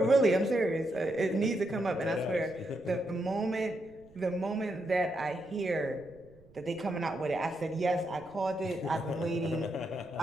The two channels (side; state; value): right; noise; rumble, 26 dB below the sound